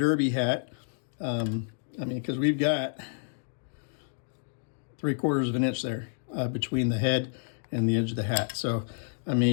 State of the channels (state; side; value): silent; right; digital silence